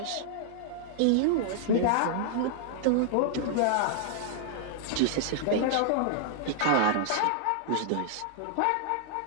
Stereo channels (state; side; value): different; both; correlation -0.01